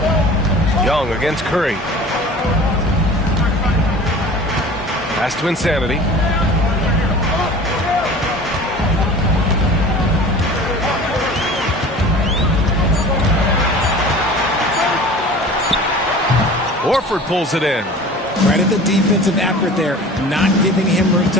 Young against Curry. Pass to Insanity. Horford pulls it in. Right at the defensive effort there, not giving him room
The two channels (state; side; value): normal; both; correlation 0.41